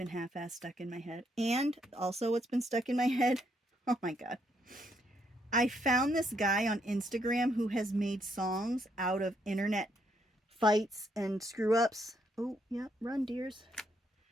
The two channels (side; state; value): both; normal; correlation 0.74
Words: half-assed stuck in my head. And also what's been stuck in my head, oh my god. I found this guy on Instagram who has made songs out of internet fights and screw-ups. Oh, yeah, run, dears.